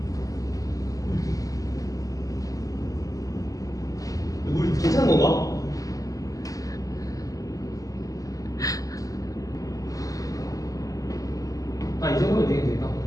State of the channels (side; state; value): right; late; 0.17 ms